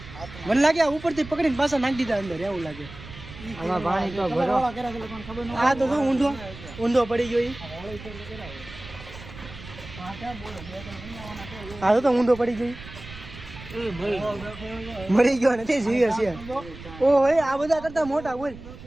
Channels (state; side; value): noise; right; rumble, 15 dB below the sound